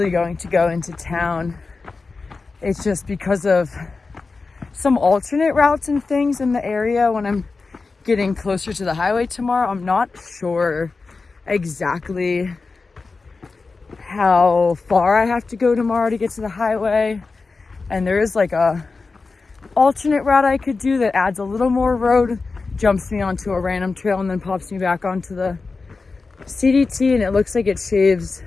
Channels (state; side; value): quieter; right; 4.1 dB